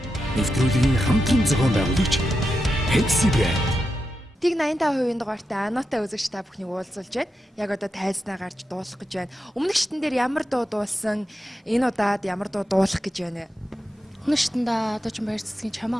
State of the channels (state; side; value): normal; both; correlation 0.88